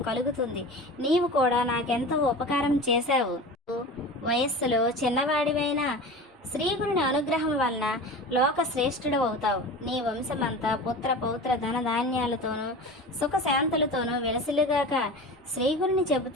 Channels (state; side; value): normal; both; correlation 0.33